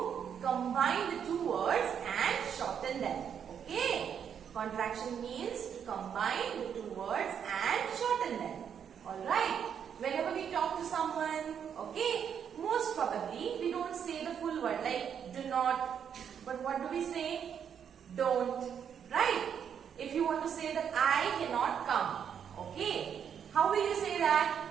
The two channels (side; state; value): left; quieter; 8.0 dB